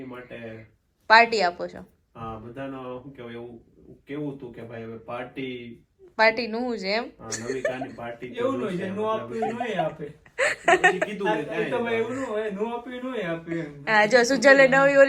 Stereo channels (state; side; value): identical; both; correlation 1.00